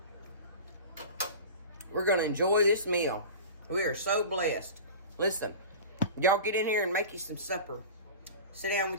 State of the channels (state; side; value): inverted; both; correlation -0.34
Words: We're going to enjoy this meal. We are so blessed. Listen, y'all get in here and make you some supper. Sit down